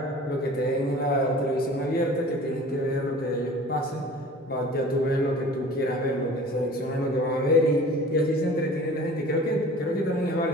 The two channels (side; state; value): both; normal; correlation 0.44